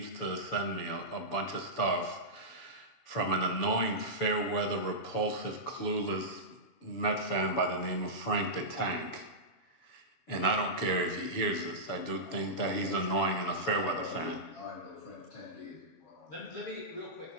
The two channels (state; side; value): late; right; 7.0 ms